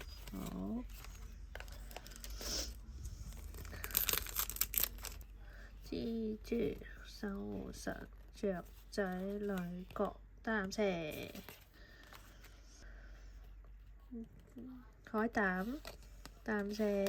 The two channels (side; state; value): both; identical; correlation 1.00